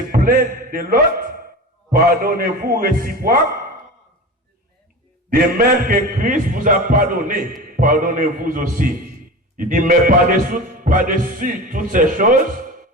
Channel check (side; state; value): both; normal; correlation 0.31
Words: plaindre de l'autre, pardonnez-vous réciproque. De même que Christ vous a pardonné, pardonnez-vous aussi. Il dit, mais par-dessus toutes ces choses,